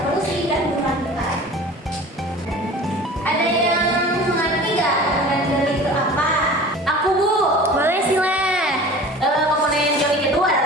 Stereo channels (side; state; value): both; normal; correlation 0.41